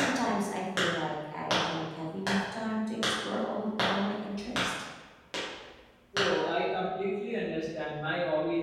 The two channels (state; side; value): identical; both; correlation 1.00